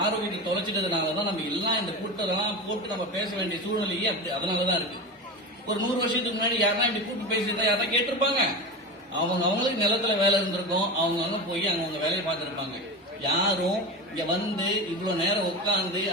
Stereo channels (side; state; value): both; normal; correlation 0.24